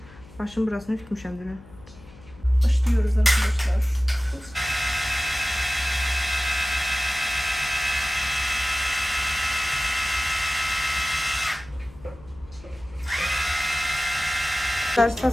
Başım burasını ütmüşəm dünən. Başlıyoruz arkadaşlar.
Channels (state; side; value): noise; left; hum, 21 dB below the sound